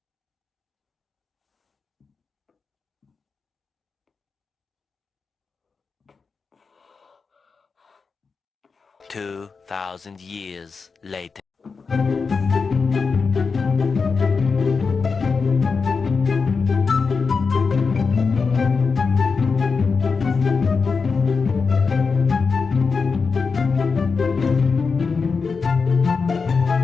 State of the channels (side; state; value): right; quieter; 4.9 dB